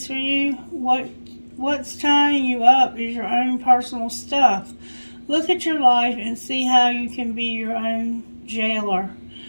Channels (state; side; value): inverted; both; correlation -1.00